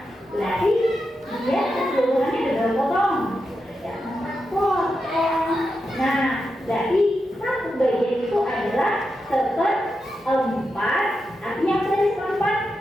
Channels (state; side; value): normal; both; correlation 0.87